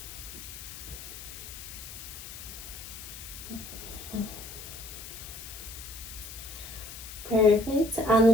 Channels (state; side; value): noise; left; hiss, 12 dB below the sound